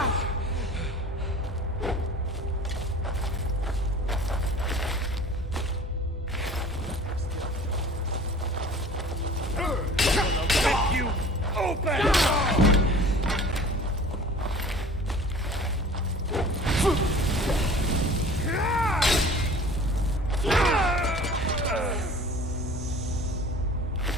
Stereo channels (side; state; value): both; normal; correlation 0.45